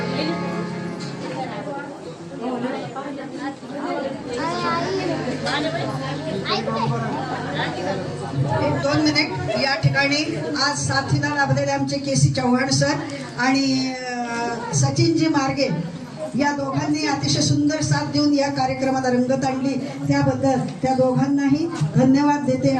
2 मिनिट. या ठिकाणी आज साथीला लाभलेले आमचे केसी चव्हाण सर आणि सचिनजी मार्गे या दोघांनी अतिशय सुंदर साथ देऊन या कार्यक्रमाला रंगत आणली. त्याबद्दल त्या दोघांनाही धन्यवाद देते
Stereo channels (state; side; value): identical; both; correlation 1.00